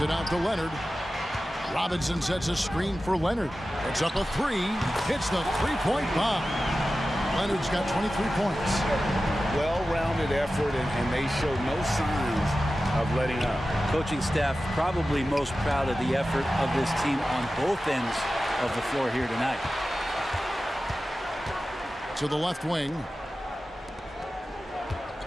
it out to Leonard. Robinson sets a screen for Leonard. It's up a 3. Hits the three-point bomb. Leonard's got 23 points. Well-rounded effort, and they show no signs of letting up. Coaching staff probably most proud of the effort of this team on both ends of the floor here tonight. To the left wing.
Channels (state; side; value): normal; both; correlation 0.94